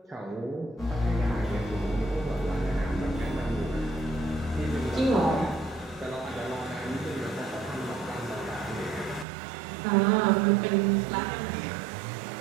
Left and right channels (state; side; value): drops out; left; at 9.2 s